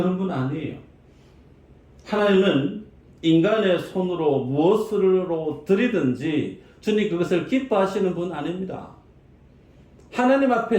분 아니에요. 하나님은 인간의 손으로 무엇으로 드리든지 주님 그것을 기뻐하시는 분 아닙니다. 하나님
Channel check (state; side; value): identical; both; correlation 1.00